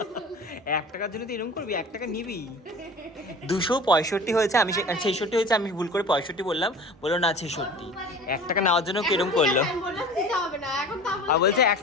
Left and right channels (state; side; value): normal; both; correlation 0.40